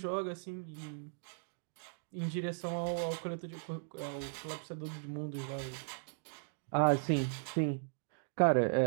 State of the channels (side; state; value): left; silent; digital silence